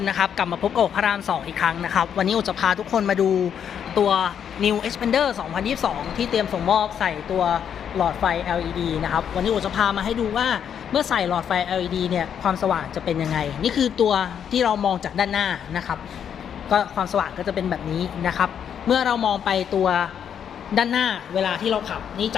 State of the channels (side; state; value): right; quieter; 8.4 dB